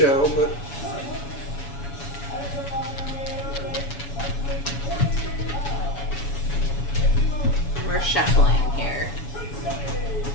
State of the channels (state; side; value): late; right; 7.1 ms